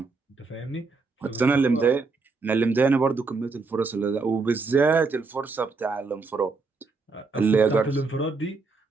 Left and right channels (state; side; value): quieter; left; 4.2 dB